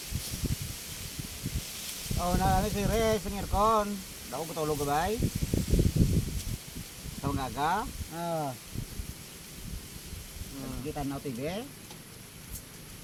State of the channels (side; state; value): both; identical; correlation 1.00